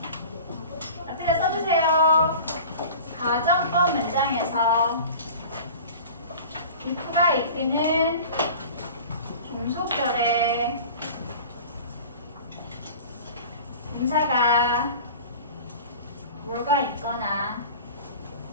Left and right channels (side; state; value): both; inverted; correlation -0.40